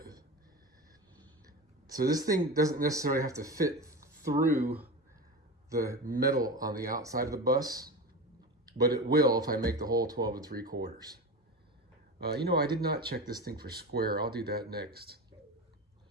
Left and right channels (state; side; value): normal; both; correlation 0.26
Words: So this thing doesn't necessarily have to fit through the metal on the outside of the bus, but it will if I make the hole 12 3/4. I did not check this thing for square. I'll do that next.